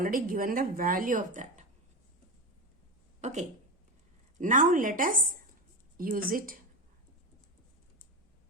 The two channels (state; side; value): normal; both; correlation 0.18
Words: given the value of that. Okay. Now let us use it.